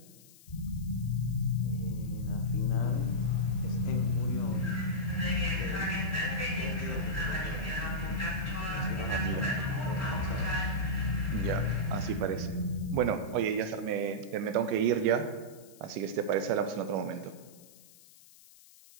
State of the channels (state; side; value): noise; left; hiss, 23 dB below the sound